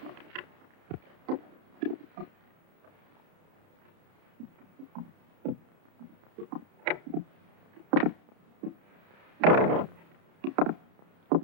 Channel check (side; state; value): left; late; 30 ms